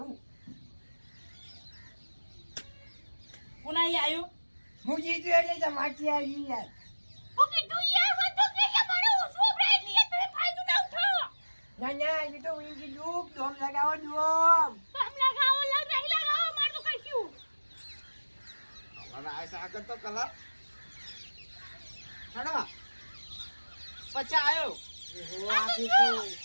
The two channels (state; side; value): inverted; both; correlation -1.00